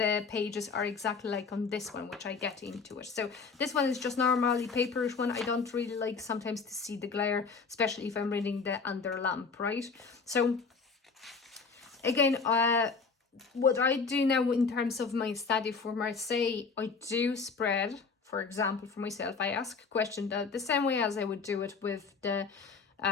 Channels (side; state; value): right; quieter; 4.9 dB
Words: pages are exactly like on this one, which I get into it. So this one is just normally paperish one. I don't really like sometimes to see the glare, especially if I'm reading the under lamp, right? So again, what I do now in terms of my study for Marseille, I do spread. For example, for myself, I ask a question the same way as I would do it with the